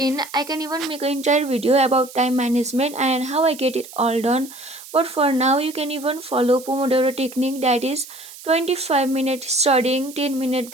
I can even make an entire video about time management and how I get it all done. But for now, you can even follow Pomodoro technique, that is 25-minute studying, 10-minute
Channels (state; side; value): noise; right; hiss, 17 dB below the sound